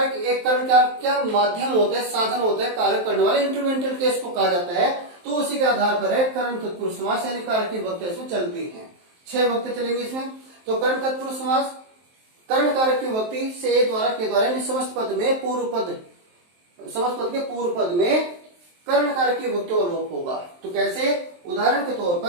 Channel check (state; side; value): late; left; 23 ms